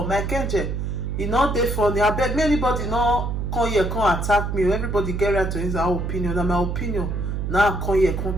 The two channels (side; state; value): right; noise; hum, 2 dB below the sound